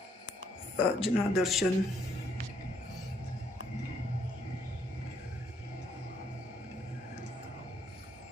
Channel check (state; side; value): normal; both; correlation 0.70